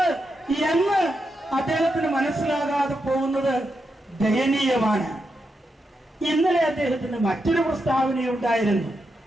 എന്ന് അദ്ദേഹത്തിന് മനസ്സിലാകാതെ പോകുന്നത് ദയനീയമാണ്. ഇന്നലെ അദ്ദേഹത്തിന് മറ്റൊരു പ്രസ്താവനയുണ്ടായിരുന്നു.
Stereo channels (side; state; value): both; normal; correlation 0.85